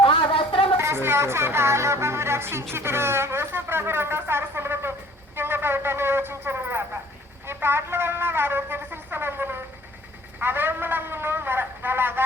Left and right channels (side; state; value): both; normal; correlation 0.53